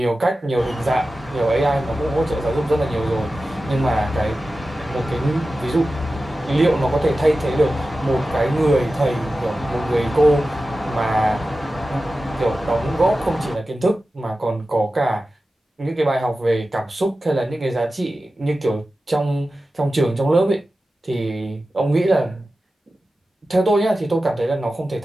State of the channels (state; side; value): normal; both; correlation 0.94